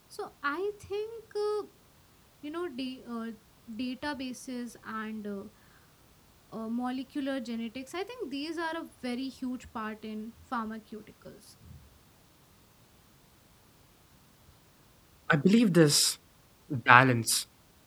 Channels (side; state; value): both; identical; correlation 1.00